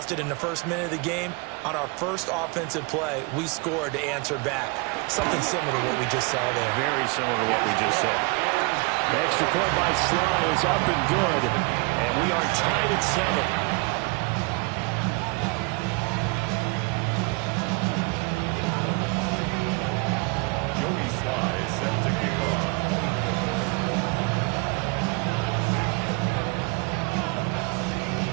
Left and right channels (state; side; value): quieter; left; 29.5 dB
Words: it in the first minute of the game. On our first offensive play, we scored to answer back. Something similar to what we just saw there. Very similar to what we just saw. The extra point by Sly is up and good, and we are tied at 7.